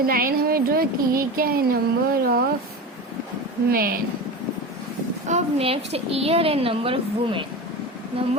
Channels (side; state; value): both; normal; correlation 0.27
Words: लाइन हमें ड्रॉ की ये क्या है, नंबर ऑफ मैन। अब next year and number of women.